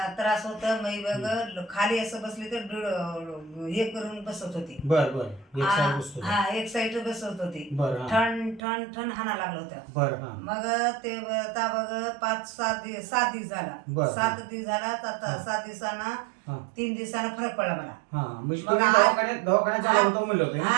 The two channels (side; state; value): left; drops out; at 8.6 s